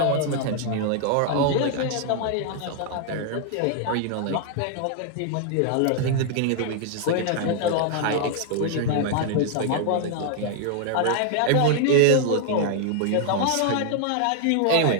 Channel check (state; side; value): different; both; correlation 0.00